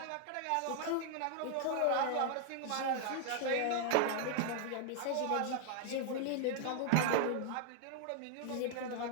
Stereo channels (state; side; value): different; both; correlation 0.00